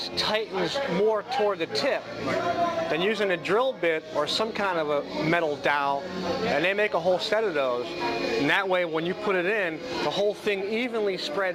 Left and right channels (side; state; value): both; identical; correlation 1.00